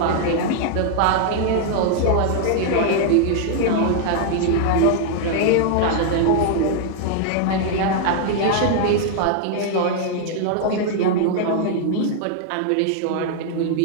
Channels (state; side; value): different; both; correlation 0.00